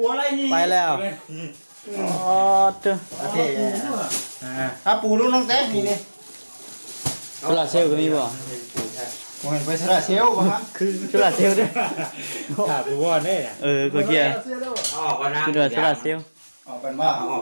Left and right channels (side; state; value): both; inverted; correlation -1.00